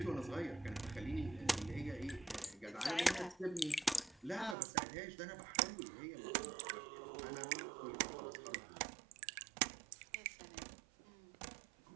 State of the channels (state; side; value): drops out; left; at 4.5 s